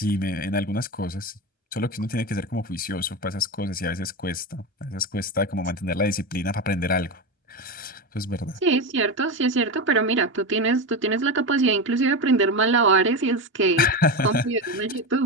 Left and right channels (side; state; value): both; normal; correlation 0.18